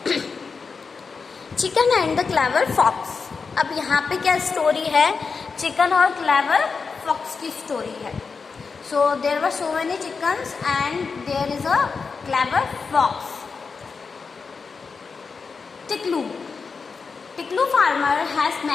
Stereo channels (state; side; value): quieter; right; 5.0 dB